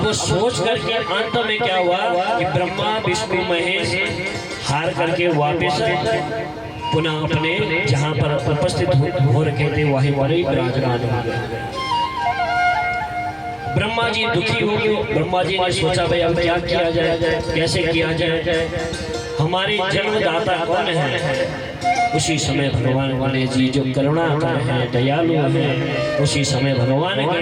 सोच करके अंत में क्या हुआ कि ब्रह्मा विष्णु महेश हार करके वापस पुनः अपने जहाँ पर उपस्थित हो रखे थे वहीं पर ही विराजमान हो गए। ब्रह्मा जी दुखी हो गए। ब्रह्मा जी ने सोचा भाई अब क्या किया जाए, कैसे किया जाए, हमारे जन्मदाता कौन है। उसी समय भगवान गणेश जी जो करुणाकर हैं, दयालु हैं, उसी समय भगवान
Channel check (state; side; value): identical; both; correlation 1.00